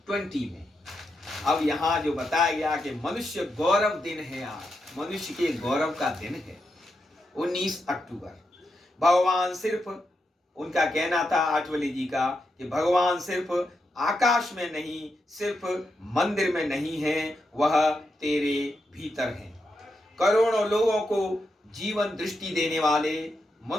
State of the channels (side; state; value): both; normal; correlation 0.85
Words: में। अब यहाँ जो बताया गया कि मनुष्य गौरव दिन है, आज मनुष्य के गौरव का दिन है 19 अक्टूबर। भगवान सिर्फ, उनका कहना था आठवले जी का, कि भगवान सिर्फ आकाश में नहीं, सिर्फ मंदिर में नहीं है, वह तेरे भीतर है। करोड़ों लोगों को जीवन दृष्टि देने वाले